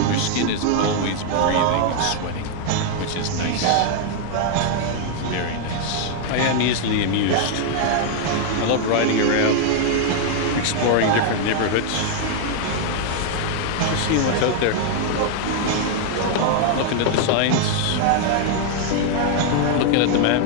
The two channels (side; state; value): both; different; correlation 0.00